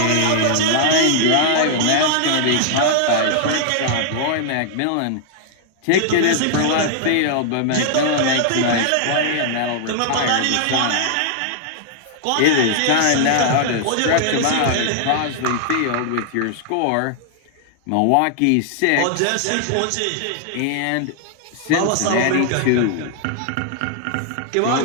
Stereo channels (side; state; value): both; different; correlation -0.01